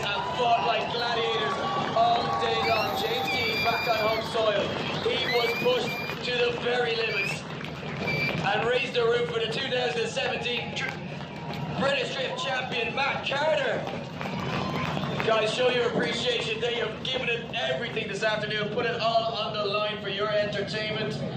have fought like gladiators all day long. James Dean back on home soil. He was pushed to the very limits and raised the roof for the 2017 British Drift Champion, Matt Carter. Guys, show your appreciation. They have given it everything this afternoon, put it all on the line for your entertainment.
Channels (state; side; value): identical; both; correlation 1.00